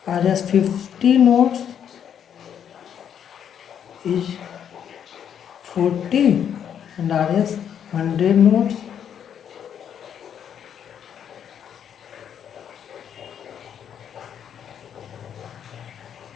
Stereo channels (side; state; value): right; quieter; 8.8 dB